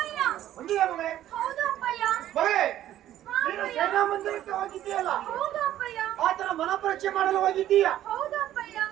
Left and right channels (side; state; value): left; quieter; 12.6 dB